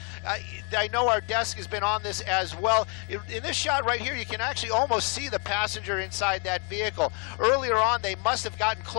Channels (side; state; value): right; quieter; 34.9 dB